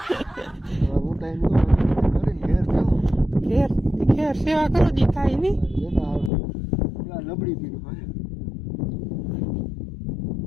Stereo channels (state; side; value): drops out; right; at 6.3 s